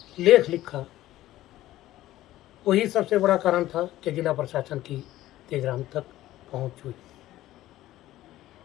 लेख लिखा, वही सबसे बड़ा कारण था कि जिला प्रशासन की तेजराम तक पहुंच हुई।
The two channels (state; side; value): quieter; right; 15.0 dB